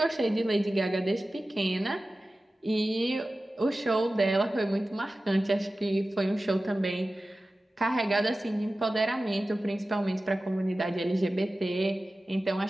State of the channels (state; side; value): normal; both; correlation 0.95